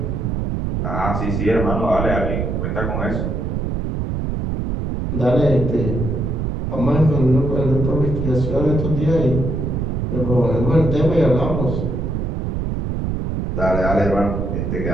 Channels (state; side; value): noise; right; rumble, 1 dB below the sound